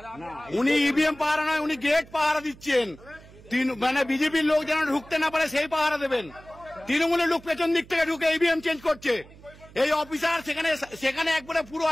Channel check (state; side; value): noise; right; hum, 22 dB below the sound